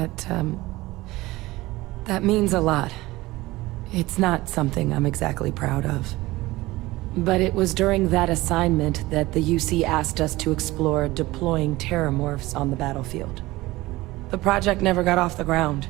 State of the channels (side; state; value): left; quieter; 19.3 dB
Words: means a lot. It's not something I'm exactly proud of. But it was during that assignment that the UC asked us to explore deploying terramorphs on the battlefield. The project never got off the ground,